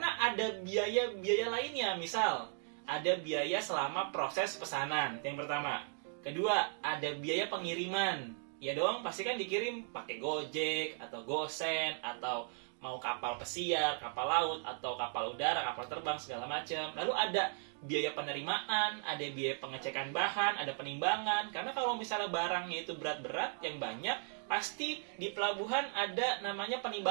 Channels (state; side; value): silent; left; 53 dB below the other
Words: ada biaya-biaya lainnya, misal ada biaya selama proses pesanan, yang pertama. Kedua, ada biaya pengiriman. Ya dong, pasti kan dikirim pakai Gojek atau Gosen atau mau kapal pesiar, kapal laut atau kapal udara, kapal terbang segala macam. Lalu ada biaya penerimaan, ada biaya pengecekan bahan, ada penimbangan. Karena kalau misalnya barangnya itu berat-berat yang banyak, pasti di pelabuhan ada namanya